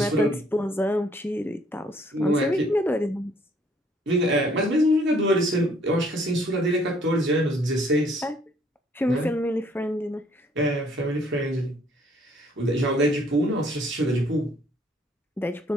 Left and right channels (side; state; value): both; normal; correlation 0.62